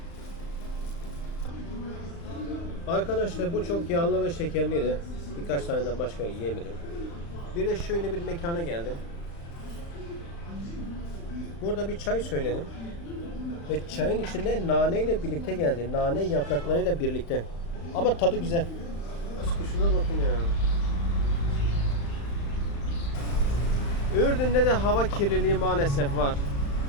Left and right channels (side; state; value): right; late; 35 ms